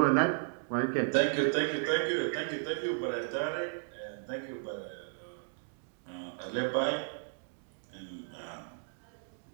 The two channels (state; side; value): silent; left; digital silence